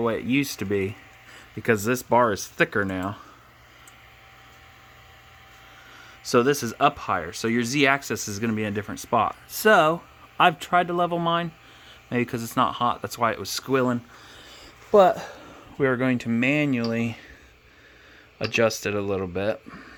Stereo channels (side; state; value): both; identical; correlation 1.00